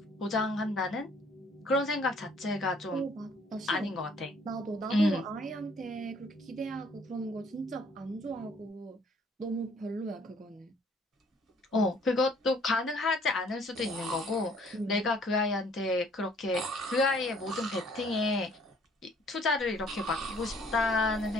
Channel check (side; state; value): both; normal; correlation 0.60